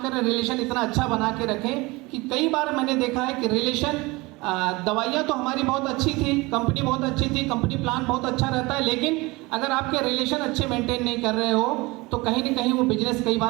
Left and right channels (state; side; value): quieter; left; 23.2 dB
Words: रिलेशन इतना अच्छा बना के रखें कि कई बार मैंने देखा है कि रिलेशन दवाइयाँ तो हमारी बहुत अच्छी थी, कंपनी बहुत अच्छी थी, कंपनी प्लान बहुत अच्छा रहता है, लेकिन अगर आपके रिलेशन अच्छे मेंटेन नहीं कर रहे हो तो कहीं ना कहीं वो बिजनेस कई